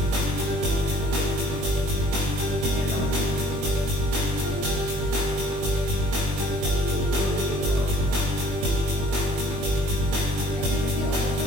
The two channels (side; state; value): left; late; 21 ms